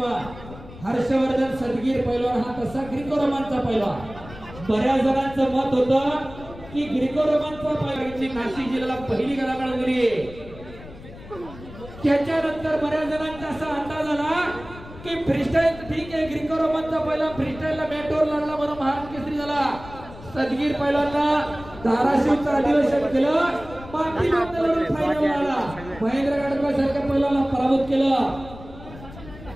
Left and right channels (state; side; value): noise; left; rumble, 16 dB below the sound